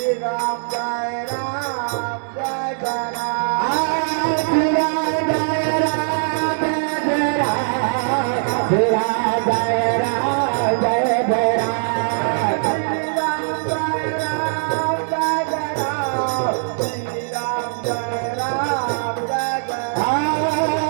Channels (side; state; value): left; silent; digital silence